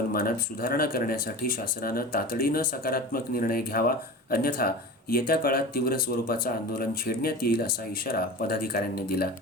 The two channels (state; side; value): normal; both; correlation 0.33